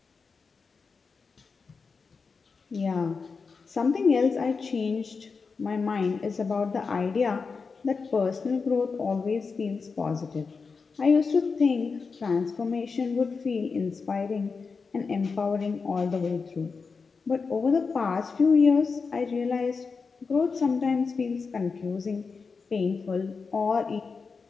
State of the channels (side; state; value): right; quieter; 4.9 dB